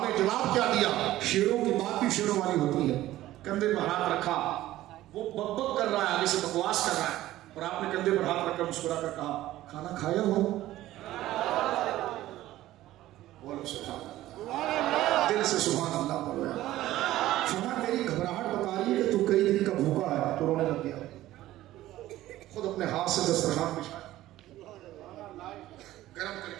نے جواب کیا دیا؟ شیروں کی بات بھی شیروں والی ہوتی ہے۔ کندھے پر ہاتھ رکھا، وہ بک بک کر رہا ہے، آگے سے بکواس کر رہا ہے، اور آپ نے کندھے پر ہاتھ رکھ کر مسکرا کر کہا کھانا کھایا ہو؟ بولو سبحان اللہ، دل سے سبحان اللہ بولو۔ فرمایا میری گھبراہٹ بتا رہی ہے کہ تو کئی دن کا بھوکا ہے، تو رونے لگ گیا، خود اپنے ہاتھ سے دسترخوان بچھایا، گرم کر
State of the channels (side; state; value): left; quieter; 15.1 dB